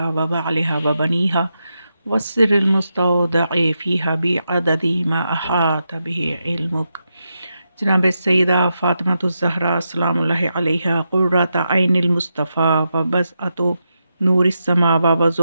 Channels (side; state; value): both; inverted; correlation -0.86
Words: و بعلہا و بنیہا والسر المستودع فیہا بعدد ما احاط بہ علمک۔ جناب سیدہ فاطمہ الزہرا سلام اللہ علیہا قرۃ عین المصطفیٰ و بضعۃ نور السماء و